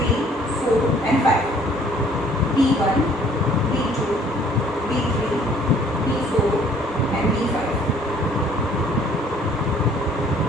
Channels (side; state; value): both; normal; correlation 0.58